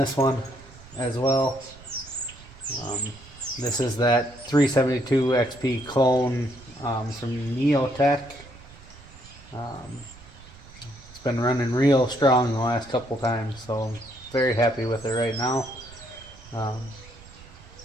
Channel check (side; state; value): right; noise; rumble, 21 dB below the sound